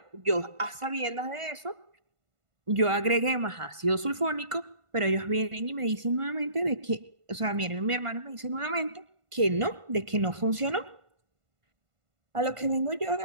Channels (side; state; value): left; late; 1.5 ms